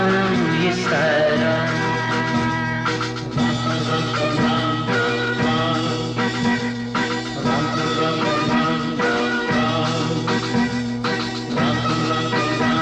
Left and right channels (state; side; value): identical; both; correlation 1.00